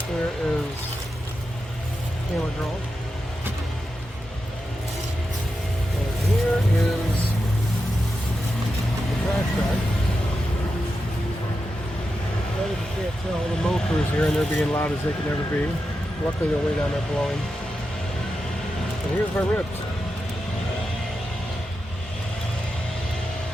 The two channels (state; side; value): normal; both; correlation 0.89